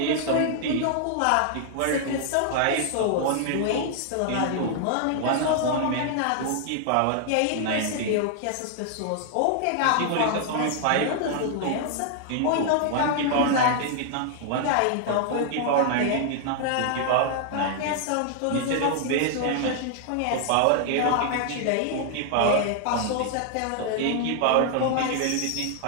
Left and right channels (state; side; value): different; both; correlation 0.00